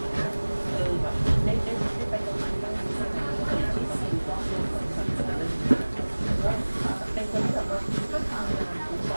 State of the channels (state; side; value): inverted; both; correlation -1.00